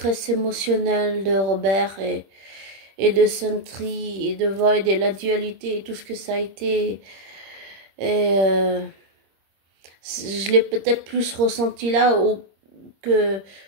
émotionnelle de Robert et de Sentry et de Void et la dualité et tout ce que ça a été. Et je l'ai peut-être plus ressenti là que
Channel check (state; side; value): late; left; 25 ms